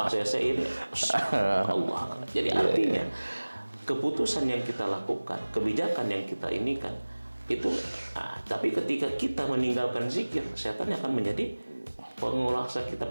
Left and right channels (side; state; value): both; inverted; correlation -1.00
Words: ACC ini, Allah. Jadi artinya keputusan yang kita lakukan, kebijakan yang kita inikan itu. Tapi ketika kita meninggalkan zikir, setan akan menjadi penguasa kita,